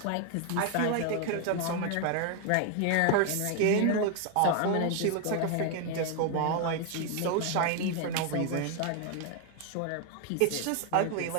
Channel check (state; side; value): different; both; correlation 0.00